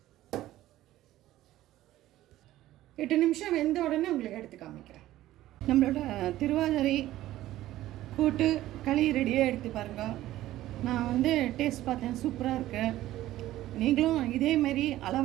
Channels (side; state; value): left; quieter; 14.8 dB